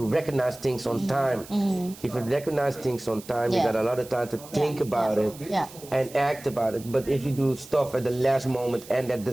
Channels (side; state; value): right; noise; hiss, 18 dB below the sound